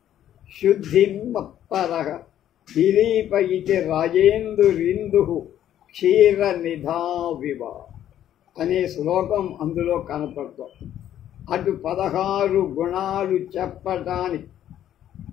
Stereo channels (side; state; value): right; quieter; 11.3 dB